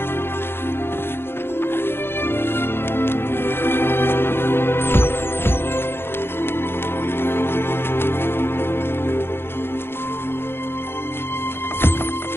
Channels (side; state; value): right; late; 0.11 ms